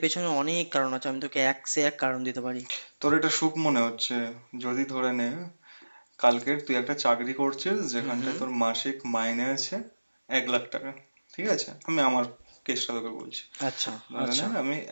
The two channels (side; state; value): both; inverted; correlation -1.00